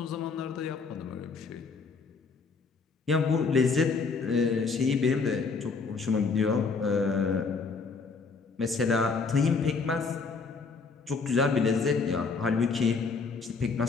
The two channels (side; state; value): right; quieter; 4.7 dB